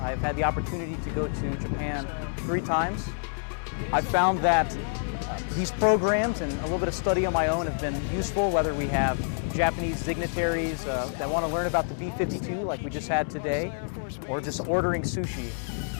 I've had the opportunity to go to Japan 3 times. I've found that these programs and a little bit of study on my own have been useful, whether we have Japanese dignitaries that want to learn about the B-52 like we just had today, or just ordering sushi.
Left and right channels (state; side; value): silent; right; digital silence